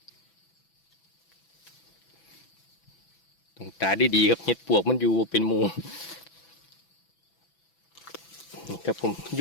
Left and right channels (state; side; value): late; right; 6.0 ms